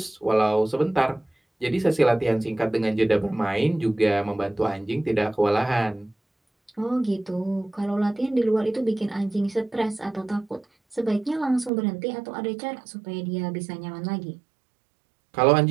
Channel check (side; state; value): left; drops out; at 11.7 s